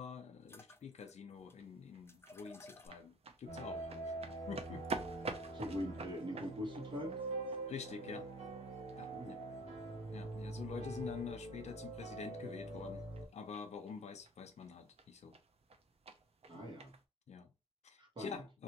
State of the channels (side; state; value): both; normal; correlation 0.47